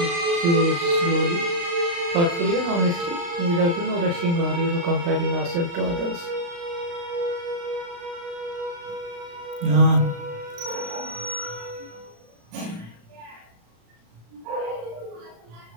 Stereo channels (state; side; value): late; left; 35 ms